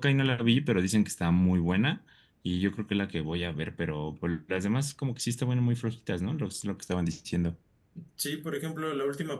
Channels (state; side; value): identical; both; correlation 1.00